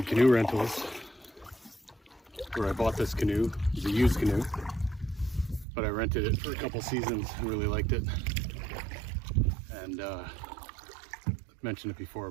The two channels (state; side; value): drops out; left; at 5.7 s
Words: Canoe Rentals, where I bought this canoe, it's a used canoe, but I rented it for a couple seasons and really liked it. and I've mentioned it before,